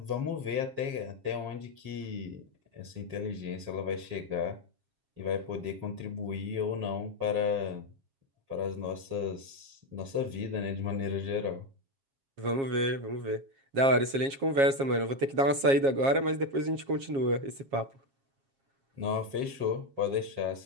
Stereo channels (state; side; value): late; left; 7.4 ms